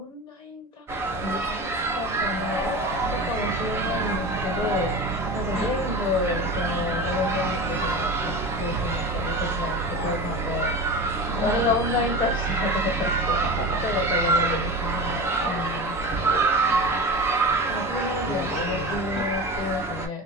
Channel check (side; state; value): both; normal; correlation 0.29